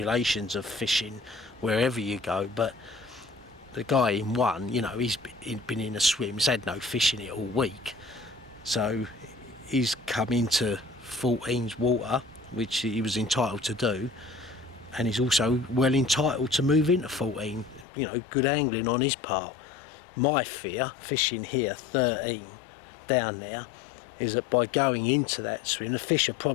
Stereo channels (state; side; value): drops out; right; at 17.9 s